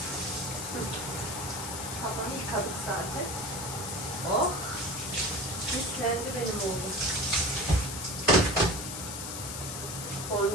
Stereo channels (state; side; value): noise; left; hiss, 6 dB below the sound